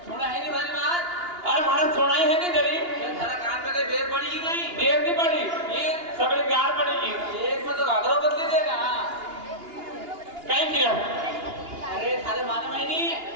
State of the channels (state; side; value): late; left; 2.8 ms